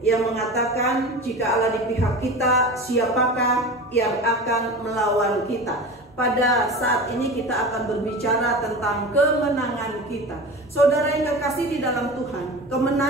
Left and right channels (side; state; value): both; normal; correlation 0.32